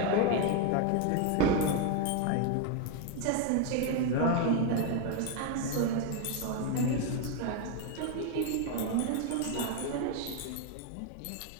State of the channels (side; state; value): both; different; correlation 0.01